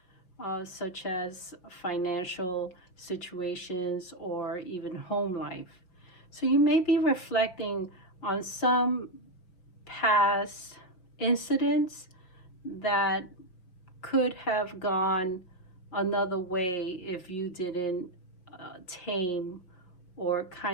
such as financial situations or even home life. So you may be reflecting on some past incidents that could have gone another way if you didn't tame or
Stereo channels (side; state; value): right; late; 5.7 ms